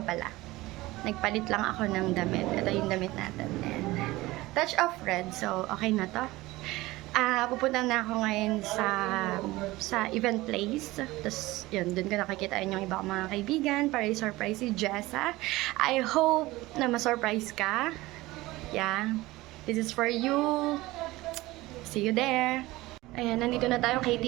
pala. Nagpalit lang ako ng damit. Ito yung damit natin. And, touch of red. So, okay na to. Pupunta na ako ngayon sa event place. Tapos, yun, dun ko nakikitain yung iba kong mga kaibigan para i-surprise si Jessa. I hope na ma-surprise ka. Yeah. This is for you. See you there. Ayan, nandito na tayo kay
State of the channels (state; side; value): quieter; left; 19.2 dB